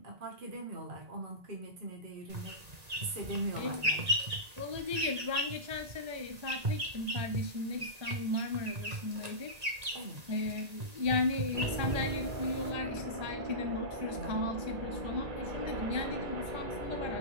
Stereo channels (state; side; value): late; left; 1.9 ms